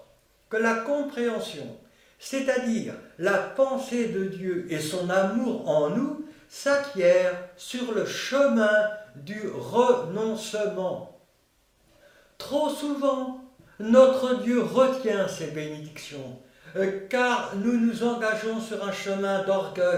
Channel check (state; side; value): identical; both; correlation 1.00